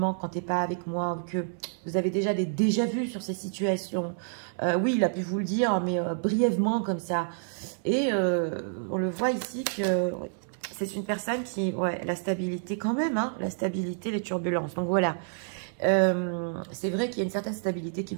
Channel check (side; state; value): left; silent; 59 dB below the other